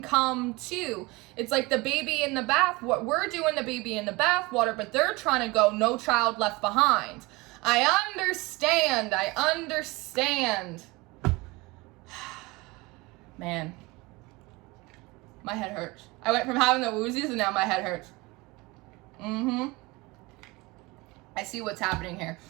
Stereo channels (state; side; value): quieter; left; 23.4 dB